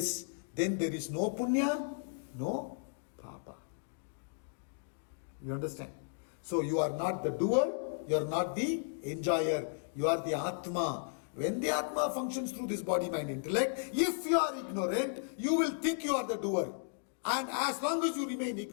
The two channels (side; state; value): right; silent; digital silence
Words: Then there is no punya, no papa. You understand? So you are not the doer, you are not the enjoyer. You are the Atma. When the Atma functions through this body, mind, intellect, if you are ignorant, you will think you are the doer. And as long as you remain